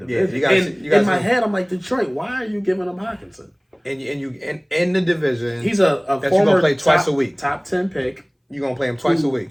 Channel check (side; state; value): both; identical; correlation 1.00